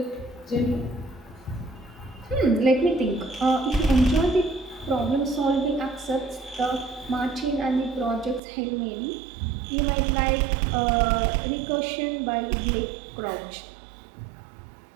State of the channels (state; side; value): drops out; left; at 8.4 s